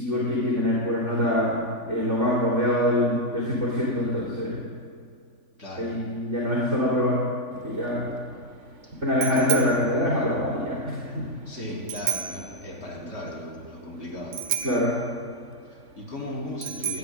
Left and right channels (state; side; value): late; left; 3.5 ms